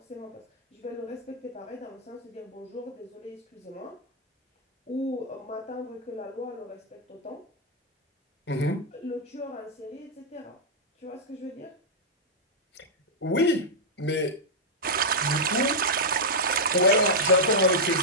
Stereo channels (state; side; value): normal; both; correlation -0.07